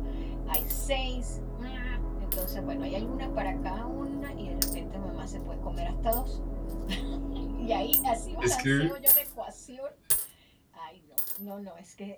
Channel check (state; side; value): identical; both; correlation 1.00